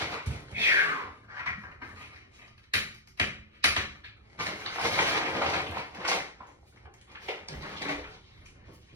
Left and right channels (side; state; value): both; normal; correlation -0.08